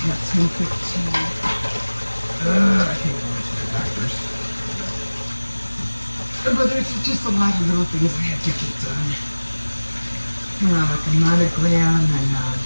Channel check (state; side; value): inverted; both; correlation -1.00